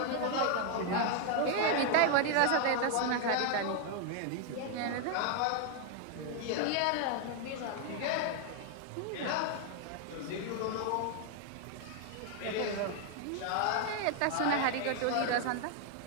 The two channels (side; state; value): both; different; correlation 0.00